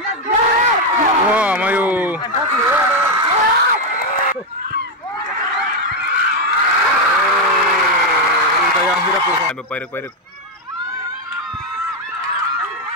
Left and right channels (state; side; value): normal; both; correlation 0.05